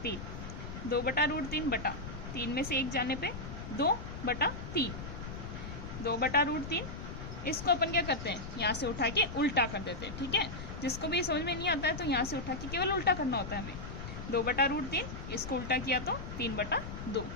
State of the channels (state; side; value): noise; left; rumble, 8 dB below the sound